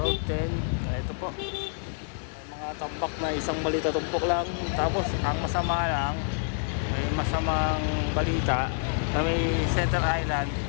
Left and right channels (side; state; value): right; silent; digital silence